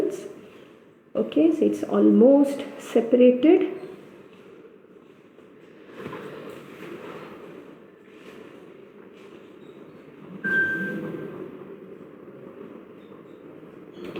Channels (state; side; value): identical; both; correlation 1.00